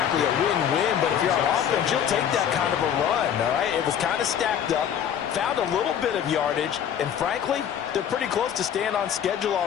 a win-win, but if you're on offense, you'll take that kind of a run, all right? It was kind of stacked up, found a little bit of yardage, and frankly, they're pretty close to staying on schedule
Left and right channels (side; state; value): right; quieter; 9.0 dB